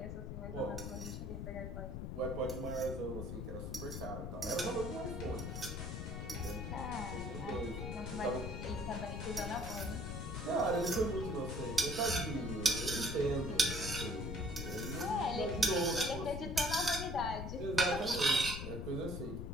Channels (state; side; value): noise; left; rumble, 5 dB below the sound